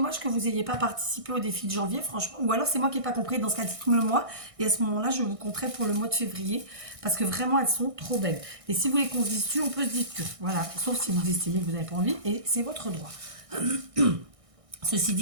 que vous n'ayez pas participé au défi de janvier, franchement. Ou alors c'est moi qui n'ai pas compris, dans ce cas, dites-moi le mois. Et à ce moment-là, je vous compterai pour le mois de février. Parce que vraiment, elles sont trop belles. Et si vous voulez qu'on se dise dessus, on peut se dire que. Voilà. Sauf si vous estimez que vous n'avez pas envie. Et c'est votre droit. Ceci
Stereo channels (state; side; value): late; left; 1.6 ms